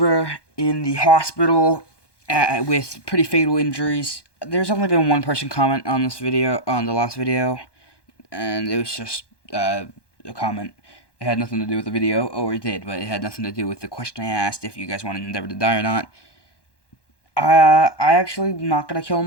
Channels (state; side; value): late; right; 1.2 ms